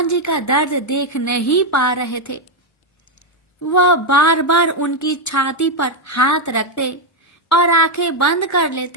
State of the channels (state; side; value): normal; both; correlation 0.03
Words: जी का दर्द देख नहीं पा रहे थे। वह बार बार उनकी छाती पर हाथ रखते और आंखें बंद कर